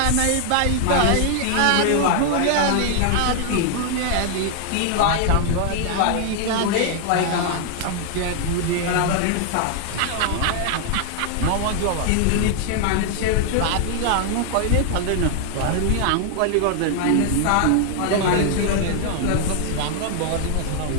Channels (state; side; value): different; both; correlation 0.00